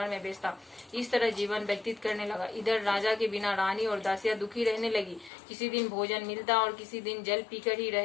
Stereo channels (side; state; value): right; drops out; at 5.3 s